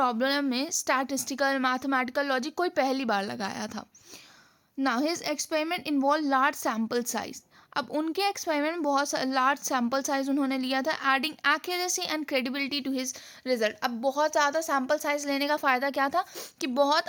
में स्टैटिस्टिकल मैथमेटिकल लॉजिक कोई पहली बार लगाया था. Now his experiment involved large sample size. अब उनके एक्सपेरिमेंट में बहुत लार्ज सैम्पल साइज उन्होंने लिया था adding accuracy and credibility to his result. अब बहुत ज़्यादा सैम्पल साइज लेने का फ़ायदा क्या था कि बहुत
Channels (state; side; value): identical; both; correlation 1.00